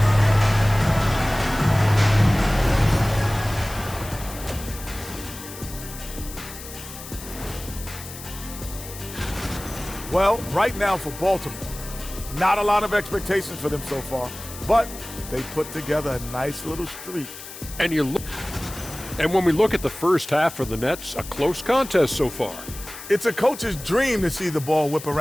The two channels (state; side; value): noise; left; hiss, 13 dB below the sound